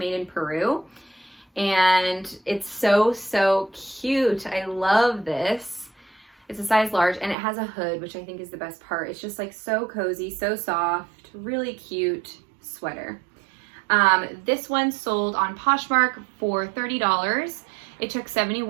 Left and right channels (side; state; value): left; drops out; at 7.4 s